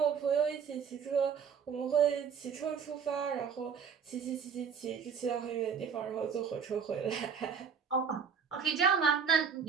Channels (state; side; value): quieter; left; 6.7 dB